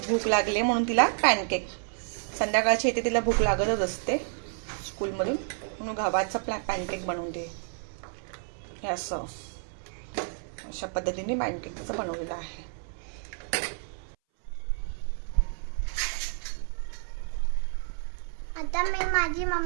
भूक लागली म्हणून तिला पॅनकेक. संध्याकाळची येते तिला भूक लागतच असते स्कूलमधून, म्हणून गव्हाचा पॅनकेक बनवून दे. हे असं अशा पद्धतीने पॅनकेकचं बनवलेलं आहे. आता माझी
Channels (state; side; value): silent; left; 58 dB below the other